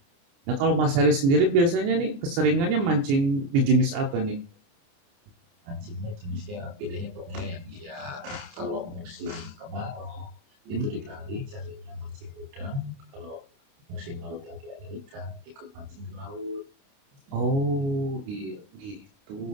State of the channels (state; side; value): late; left; 29 ms